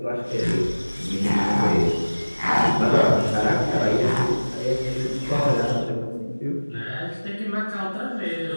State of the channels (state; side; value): inverted; both; correlation -1.00